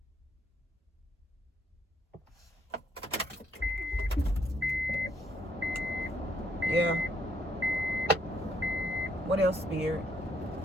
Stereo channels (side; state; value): both; normal; correlation 0.72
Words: Yeah. What else, Spirit?